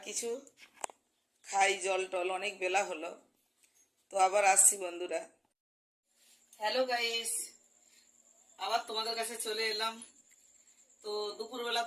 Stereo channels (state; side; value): identical; both; correlation 1.00